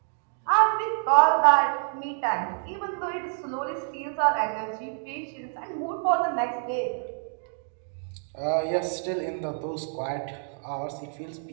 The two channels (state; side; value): silent; left; digital silence